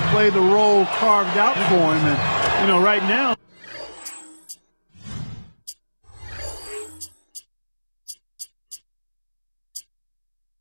play the role carved out for him. And, right now,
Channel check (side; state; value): both; inverted; correlation -1.00